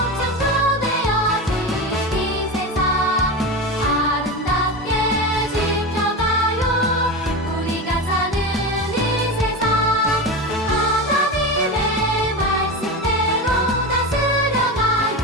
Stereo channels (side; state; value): both; normal; correlation 0.22